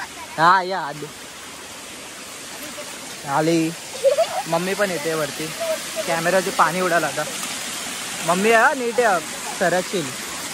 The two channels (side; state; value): both; identical; correlation 1.00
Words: हा या आधे. आली मम्मी पण येते वरती. कॅमेराचे पाणी उडाला आता. मम्मी आहे नीट आहे, सरकशील.